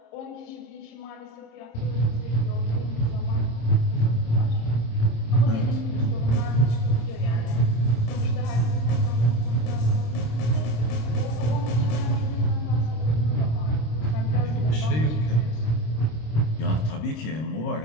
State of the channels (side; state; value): right; late; 26 ms